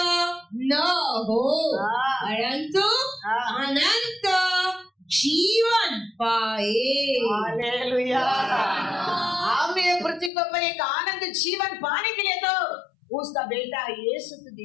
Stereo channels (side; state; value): right; drops out; at 10.3 s